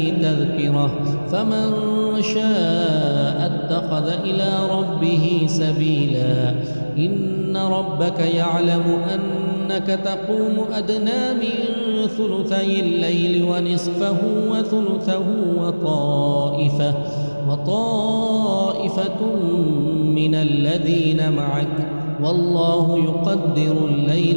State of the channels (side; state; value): both; inverted; correlation -1.00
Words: تذكرة فمن شاء اتخذ إلى ربه سبيلا إن ربك يعلم أنك تقوم أدنى من ثلثي الليل ونصفه وثلثه وطائفة من الذين معك والله يقدر